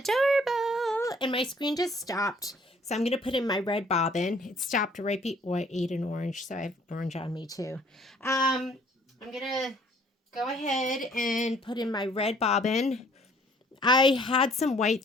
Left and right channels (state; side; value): normal; both; correlation 0.59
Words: And my screen just stopped. So I'm going to put in my red bobbin. It stopped right before I ate an orange. So I have orange on me too. I'm going to go ahead and put in my red bobbin. I had some white